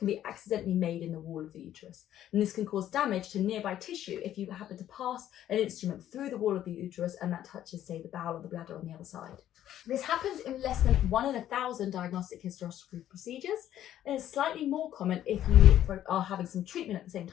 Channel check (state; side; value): quieter; right; 11.8 dB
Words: be accidentally made in the wall of the uterus. And this can cause damage to nearby tissue if you happen to pass an instrument through the wall of the uterus and that touches, say, the bowel or the bladder on the other side. This happens in less than 1 in 1,000 diagnostic hysteroscopy procedures, and it's slightly more common if you are having some treatment at the same